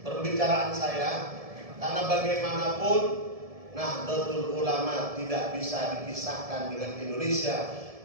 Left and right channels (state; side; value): late; left; 1.7 ms